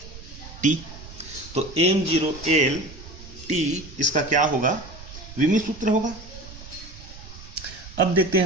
t। तो m0L t इसका क्या होगा, विमी सूत्र होगा। अब देखते हैं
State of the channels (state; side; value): noise; right; rumble, 16 dB below the sound